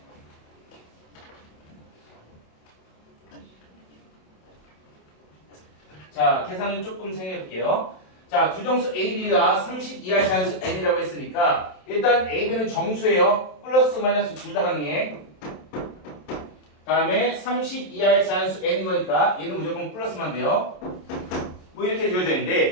자, 계산은 조금 생각해 볼게요. 자, 두 정수 AB가 30 이하의 자연수 N이라고 했으니까 일단 AB는 정수예요. 플러스 마이너스 둘 다 가능해. 다음에 30 이하의 자연수 N인 거니까 얘는 무조건 플러스만 돼요. 뭐 이렇게 지어져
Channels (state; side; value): late; right; 27 ms